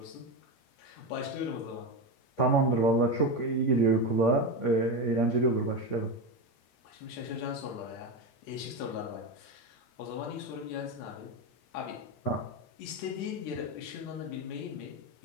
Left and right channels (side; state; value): right; late; 8.5 ms